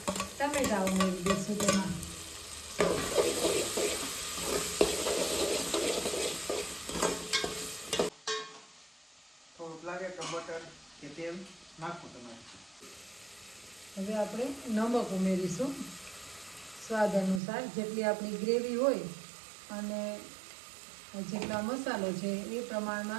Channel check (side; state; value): left; drops out; at 17.4 s